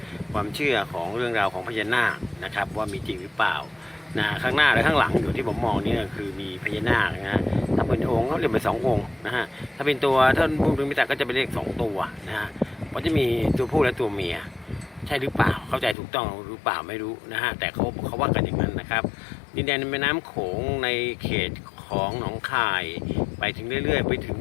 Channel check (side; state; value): right; drops out; at 16.0 s